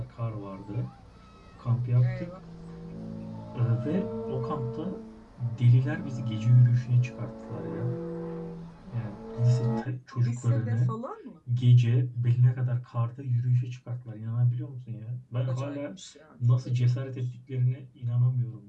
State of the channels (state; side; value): identical; both; correlation 1.00